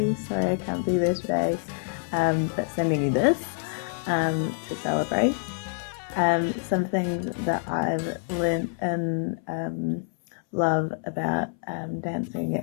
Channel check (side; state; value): right; silent; 60 dB below the other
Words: Sorry I can't be there today, but sending you this to celebrate. Something that I've learned and love about dancing